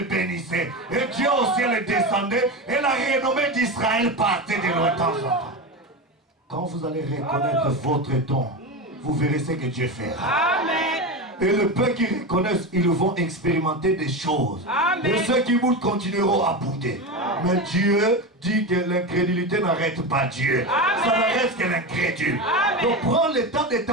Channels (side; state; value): both; normal; correlation 0.20